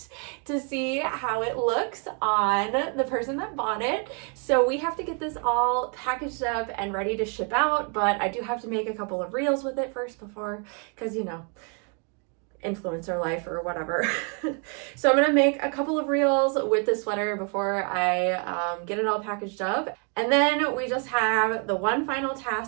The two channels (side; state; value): left; quieter; 37.3 dB